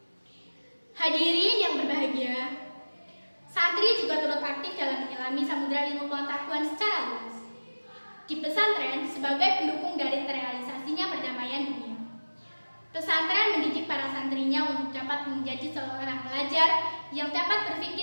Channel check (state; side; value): inverted; both; correlation -1.00